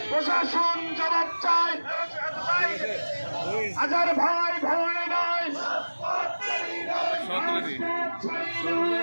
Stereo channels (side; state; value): both; inverted; correlation -1.00